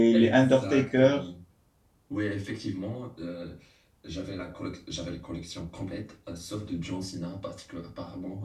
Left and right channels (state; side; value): identical; both; correlation 1.00